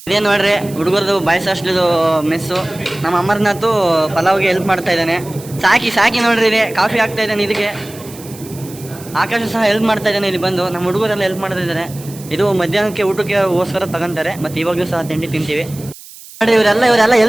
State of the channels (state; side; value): noise; right; hiss, 18 dB below the sound